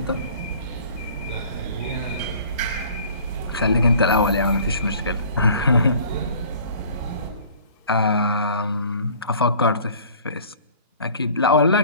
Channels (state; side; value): inverted; both; correlation -0.49